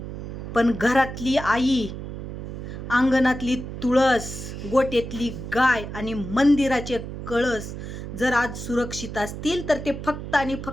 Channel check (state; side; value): noise; right; hum, 8 dB below the sound